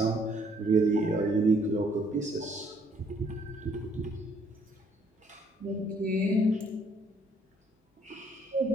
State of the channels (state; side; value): normal; both; correlation 0.65